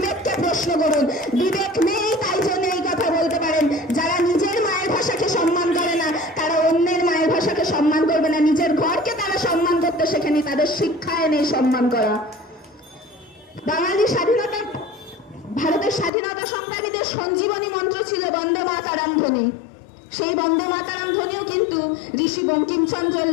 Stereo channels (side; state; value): right; drops out; at 16.1 s